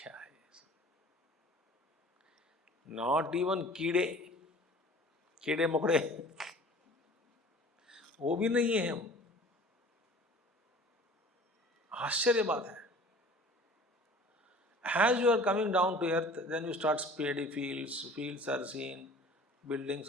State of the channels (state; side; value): normal; both; correlation 0.45